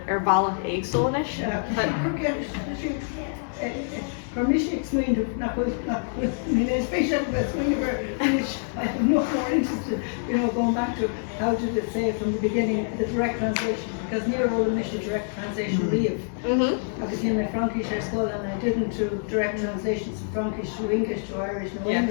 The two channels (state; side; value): silent; right; digital silence